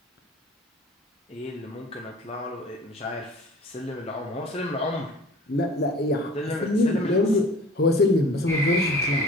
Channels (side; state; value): both; normal; correlation 0.45